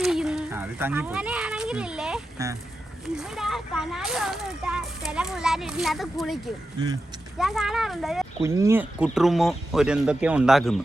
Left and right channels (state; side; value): normal; both; correlation 0.90